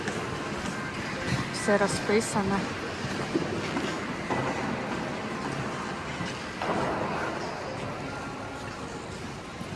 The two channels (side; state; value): both; identical; correlation 1.00